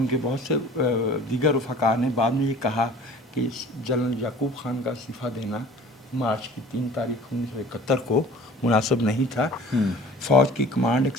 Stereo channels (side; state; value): both; normal; correlation 0.46